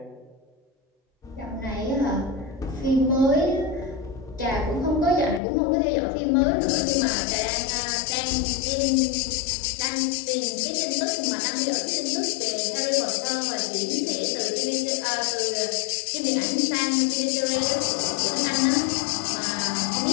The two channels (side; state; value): right; drops out; at 5.4 s